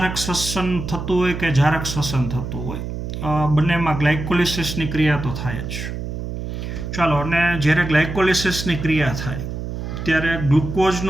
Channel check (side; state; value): right; noise; hum, 6 dB below the sound